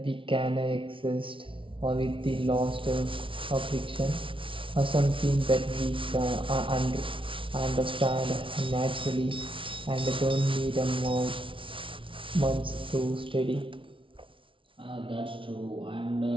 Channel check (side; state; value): left; late; 0.25 ms